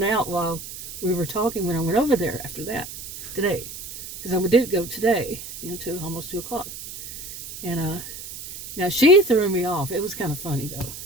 out while we were talking when I went over there after that, today. Because I did go today, to almost 2 o'clock. And now she threw me off. It was kind of funny, though.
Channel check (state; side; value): noise; right; hiss, 11 dB below the sound